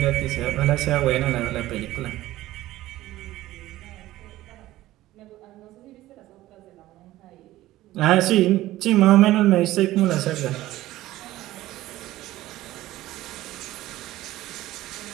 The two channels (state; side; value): quieter; left; 15.9 dB